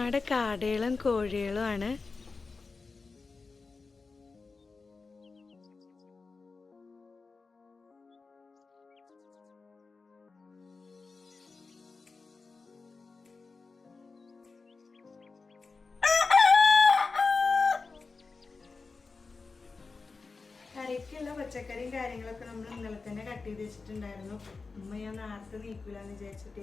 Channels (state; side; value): quieter; right; 4.2 dB